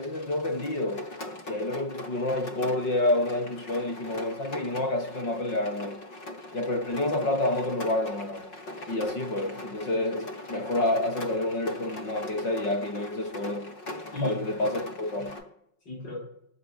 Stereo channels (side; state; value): right; late; 5.5 ms